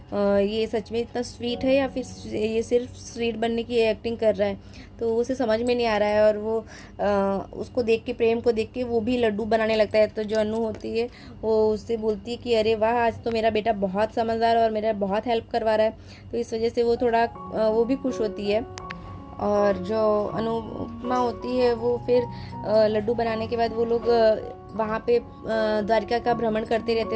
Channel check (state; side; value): identical; both; correlation 1.00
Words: ये सच में इतना स्वीट है या फिर ये सिर्फ स्वीट बनने की एक्टिंग कर रहा है। तो उसे समझ में नहीं आ रहा है और वो उसको देख के, प्रेम को देख के वो भी लड्डू बनाने लगता है। तो जो अनु होती है वो उससे बोलती है कि अरे वाह आज तो मेरा बेटा बहुत समझदार और मेरा बहुत हेल्प करवा रहा है। तो इस वजह से वो थोड़ा वो भी खुश होती है। और जो अनुपमा होती है वो फिर लड्डू बनाने के बाद वो लोग वहाँ पे द्वारिका का भ्रमण करते रहते